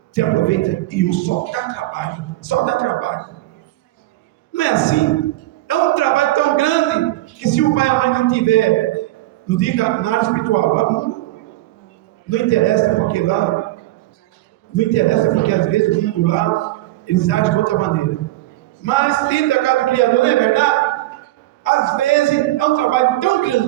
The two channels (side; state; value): left; quieter; 17.0 dB